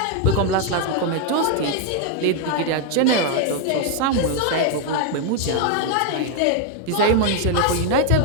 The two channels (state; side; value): different; both; correlation 0.00